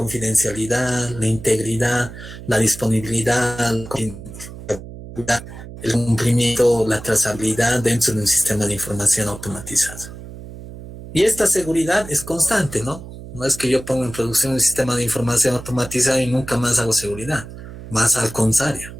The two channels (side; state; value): right; noise; hum, 13 dB below the sound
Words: la integridad, la disponibilidad, el cumplimiento, la trazabilidad dentro de un sistema de información automatizado. Y esta seguridad es constante, ¿no? No es que yo ponga en producción un sistema de información automatizado y nunca más hago seguridad, más al contrario.